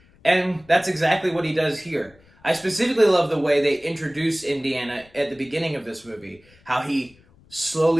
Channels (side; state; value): left; noise; rumble, 29 dB below the sound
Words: and that's exactly what he does here. I specifically love the way they introduce Indiana at the beginning of this movie, how he